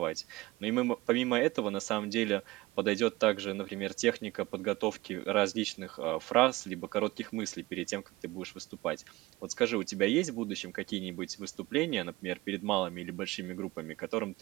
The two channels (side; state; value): left; quieter; 20.1 dB